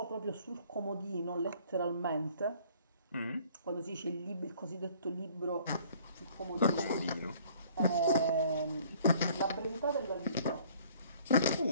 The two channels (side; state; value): both; inverted; correlation -0.56